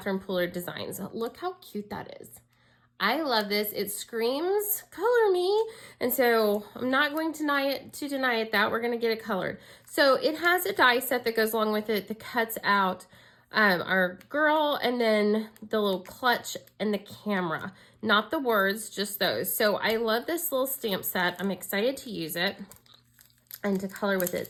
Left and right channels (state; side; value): identical; both; correlation 1.00